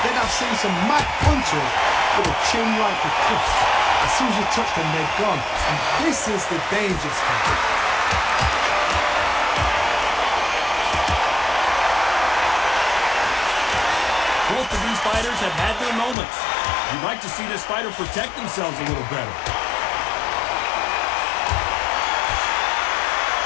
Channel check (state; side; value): drops out; right; at 16.2 s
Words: then I've seen some mad punchers with a chin like a cliff. As soon as you touch them, they're gone. And this is the dangerous part. Both of these fighters have had their moments. You'd like to see this fighter protect themselves a little better.